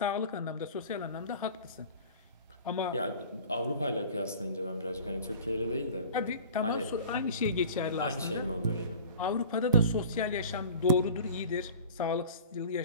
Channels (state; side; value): inverted; both; correlation -0.41